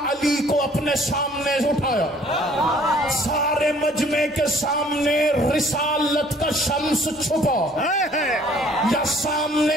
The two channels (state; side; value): normal; both; correlation 0.57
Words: علی کو اپنے سامنے اٹھایا، سارے مجمع کے سامنے رسالت کا شمس چھپا یا